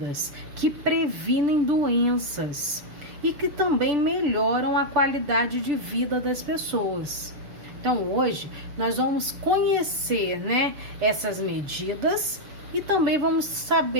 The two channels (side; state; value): left; late; 6.8 ms